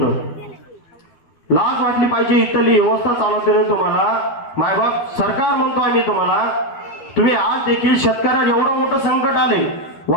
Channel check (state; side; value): late; right; 12 ms